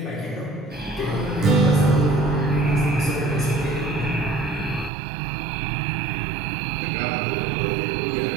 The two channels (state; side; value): drops out; left; at 4.9 s